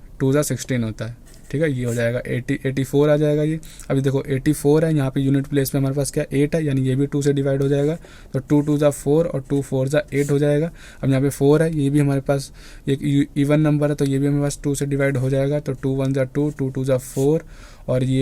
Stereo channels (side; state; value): both; identical; correlation 1.00